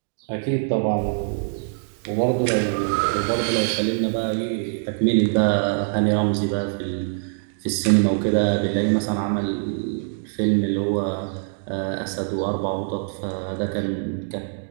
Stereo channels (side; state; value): left; silent; digital silence